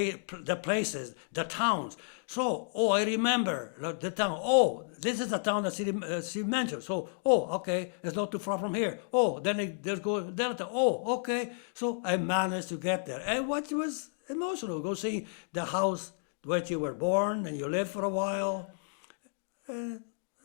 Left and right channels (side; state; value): right; silent; digital silence